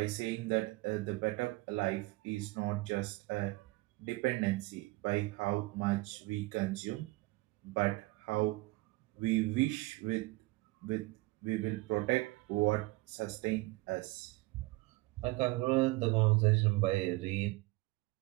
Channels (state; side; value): quieter; left; 21.5 dB